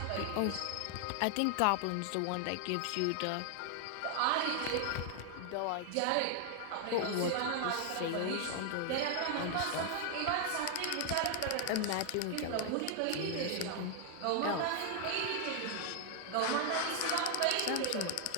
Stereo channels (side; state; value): both; different; correlation 0.00